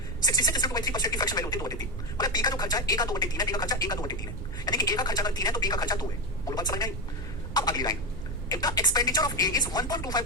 66.3% की फ्रैक्शन वैल्यू होती है 2/3। मतलब बी का जो खर्चा है ए का 2/3 है, बी का खर्चा ए का 2/3 है, यानी कि ए का खर्चा अगर 3 है तो बी का खर्चा 2 है। बोलो बात समझ में आई? अब अगली line, if the expenditure of A is 1.25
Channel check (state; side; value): noise; right; rumble, 6 dB below the sound